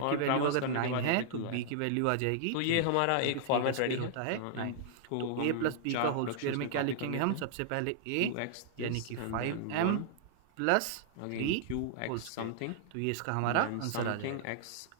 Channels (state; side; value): different; both; correlation -0.01